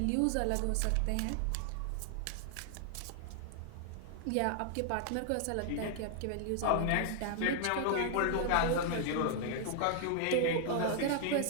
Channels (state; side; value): different; both; correlation 0.00